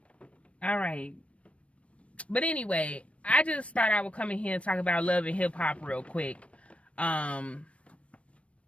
All right. But anyway, I just thought I would come in here and talk about love and hip hop real quick. I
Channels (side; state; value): right; late; 0.062 ms